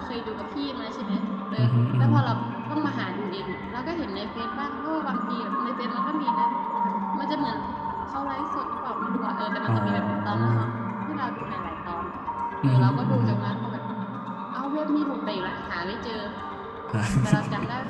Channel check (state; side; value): identical; both; correlation 1.00